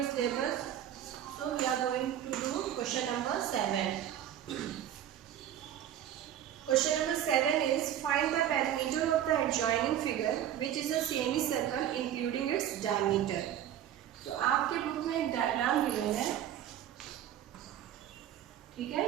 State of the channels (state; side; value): quieter; left; 10.9 dB